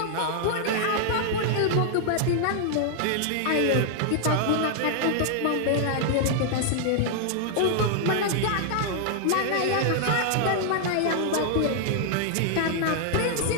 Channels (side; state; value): both; different; correlation -0.01